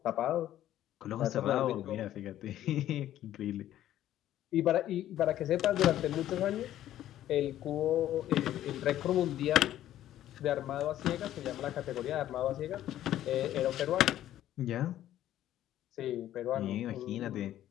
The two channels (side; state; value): right; quieter; 12.6 dB